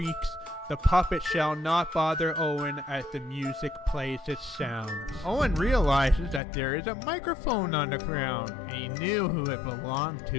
the puppet shall not bother Owen as the music plays its sounds. Owen realizes that there is a microphone on the ground, and he knew who it belonged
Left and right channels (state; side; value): drops out; right; at 6.4 s